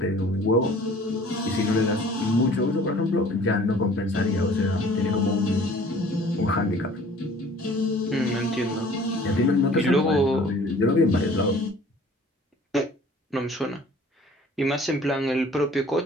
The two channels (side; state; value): both; normal; correlation 0.50